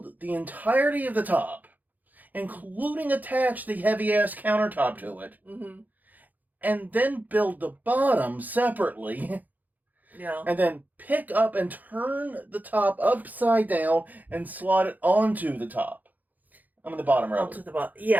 the entirety of the top, including attach the heavy-ass countertop to it, mm-hmm. and then build the bottom separately. Yeah. And then pick up and turn the top upside down and slot it onto the top. I'm in the bottom row. Onto the bottom.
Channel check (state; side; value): late; left; 0.082 ms